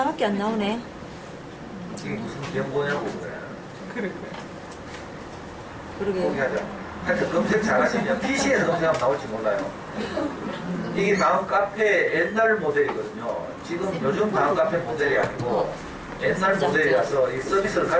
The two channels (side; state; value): both; identical; correlation 1.00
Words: 안 나오네. 이게 무슨 변보냐고, 그래. 그러게. 포기하자. 하여튼 검색 잘하시면 PC에서 검색하면 나올지 몰라요. 이게 다음 카페 옛날 모델이거든요. 지금 요즘 다음 카페 모델이 아니고 옛날 모델이라서 이 서비스를